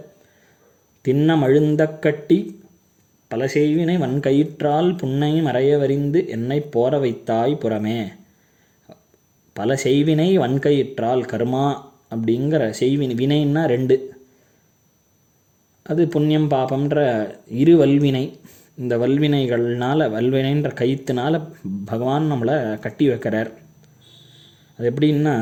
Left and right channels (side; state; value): both; identical; correlation 1.00